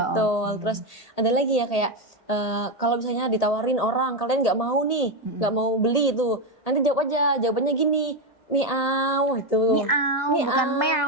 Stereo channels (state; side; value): late; right; 1.8 ms